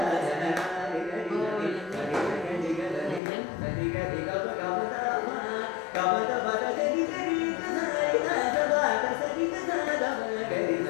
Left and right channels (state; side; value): drops out; right; at 3.2 s